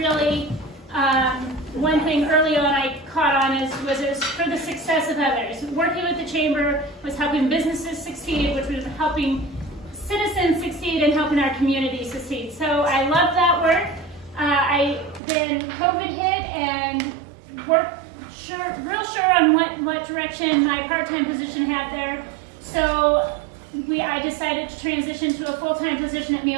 one thing early on I caught on was it was for the success of others. Working with the chamber was helping businesses succeed, which was helping citizens succeed and helping our community succeed. So I loved that work. Then COVID hit and worked real sure on what direction my part-time position had there. So I decided to transition to a full-time position at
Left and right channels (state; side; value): drops out; left; at 15.2 s